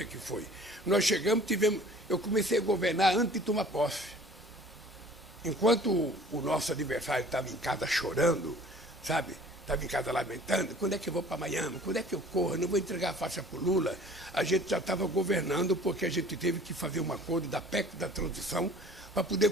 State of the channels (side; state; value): both; normal; correlation 0.49